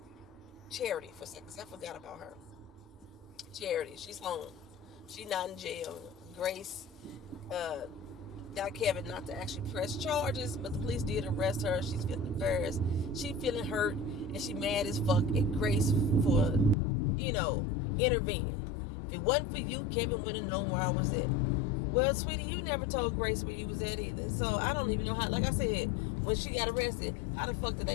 Charity for a second, because I forgot about her. Charity, she's home. She's not in jail. Grace got Kevin not to actually press charges, but the police did arrest her. She's feeling embarrassed. She's feeling hurt, and she mad as fuck at Grace for, intervening. If it wasn't for you, Kevin wouldn't have known where I was at. Well, sweetie, you never told Grace where you was at either. So I don't even know how, like I said, when she got arrested, how the fuck did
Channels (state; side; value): drops out; right; at 16.8 s